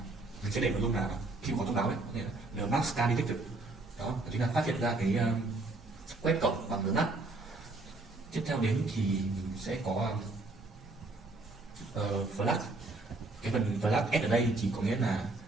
mình sẽ để nội dung là khi có thông báo ấy, có thể là Nmap scan detected, đó chính là phát hiện ra cái quét cổng bằng Nmap. Tiếp theo đến thì mình sẽ có flag. Cái phần flag S ở đây thì có nghĩa là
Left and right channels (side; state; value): left; quieter; 3.1 dB